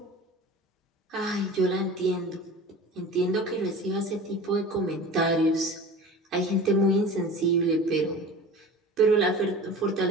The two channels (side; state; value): both; normal; correlation 0.37